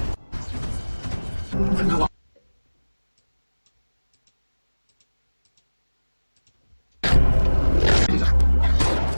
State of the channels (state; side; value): inverted; both; correlation -1.00